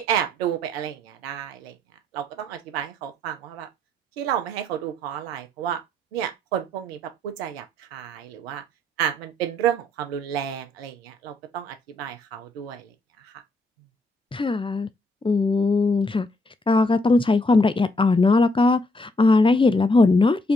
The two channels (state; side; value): normal; both; correlation 0.72